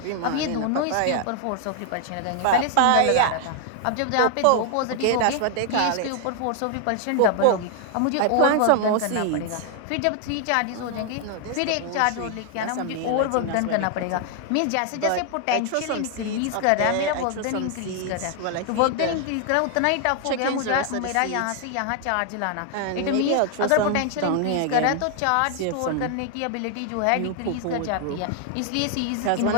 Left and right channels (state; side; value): different; both; correlation 0.00